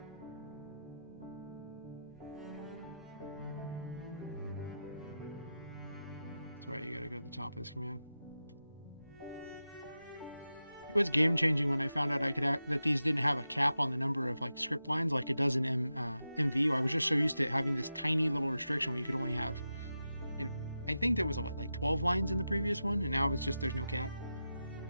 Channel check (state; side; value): inverted; both; correlation -0.91